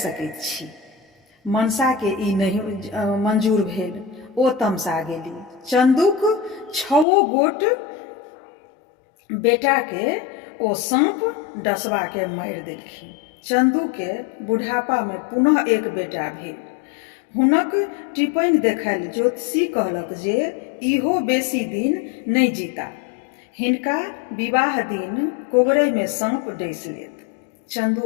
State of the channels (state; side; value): drops out; right; at 7.1 s